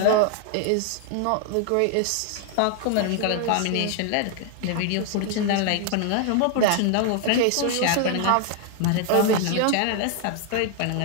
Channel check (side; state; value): both; different; correlation 0.00